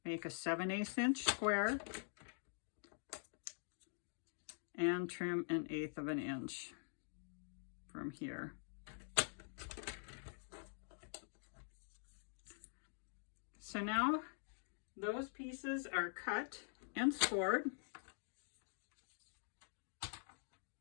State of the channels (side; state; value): right; silent; digital silence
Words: Make a 7/8 inch square and trim 1/8 of an inch from here. So now those pieces are cut and scored.